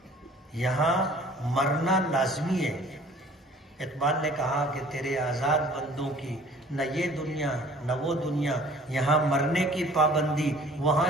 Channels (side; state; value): both; normal; correlation 0.51